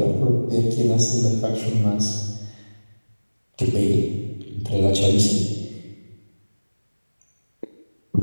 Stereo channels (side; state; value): both; inverted; correlation -1.00